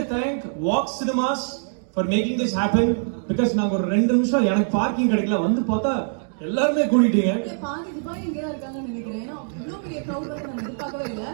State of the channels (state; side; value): silent; left; digital silence